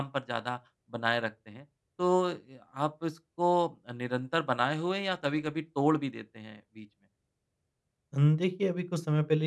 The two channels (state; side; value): identical; both; correlation 1.00